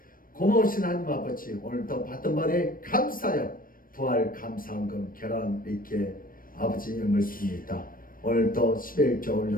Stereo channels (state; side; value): late; right; 0.41 ms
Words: 고마우신 하나님 아버지 오늘도 받은 바에 감사하여 부활 감사헌금 결혼 이렇게 아버지 예물 씁니다. 오늘도 11조